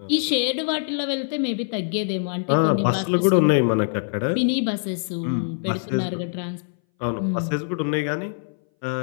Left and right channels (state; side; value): silent; right; 60 dB below the other